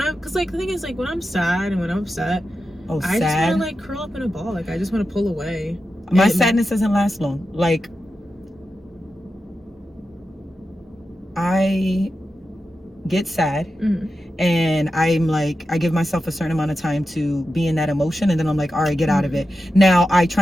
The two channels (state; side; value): normal; both; correlation 0.91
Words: like the thing is, like, when I'm sad and when I'm upset, I just want to like curl up in a ball. Like, I just want to pull away. My sadness doesn't last long. Like, I get sad, and I'm like, I give myself a certain amount of time to be in that emotion, and then I'm like, all right, get out of it. Now I